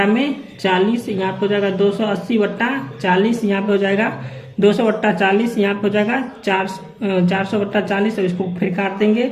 में 40। यहाँ पे हो जाएगा 280 बट्टा 40। यहाँ पे हो जाएगा 200 बट्टा 40। यहाँ पे हो जाएगा 400 बट्टा 40। और इसको फिर काट देंगे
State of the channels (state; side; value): identical; both; correlation 1.00